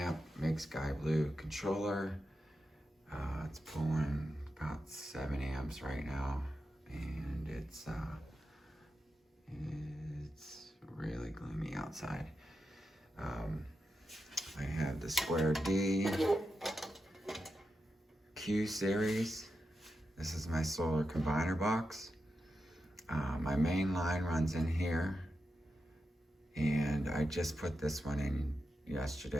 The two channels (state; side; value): normal; both; correlation 0.89